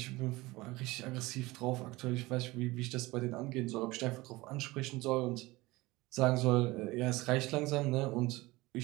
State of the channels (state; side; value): quieter; left; 20.8 dB